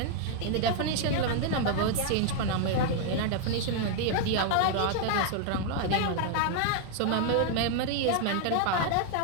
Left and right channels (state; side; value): different; both; correlation 0.00